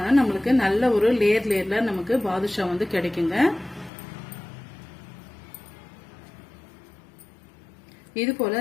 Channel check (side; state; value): right; drops out; at 3.9 s